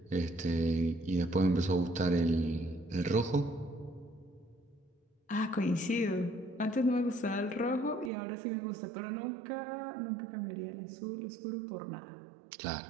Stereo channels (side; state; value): left; drops out; at 8.1 s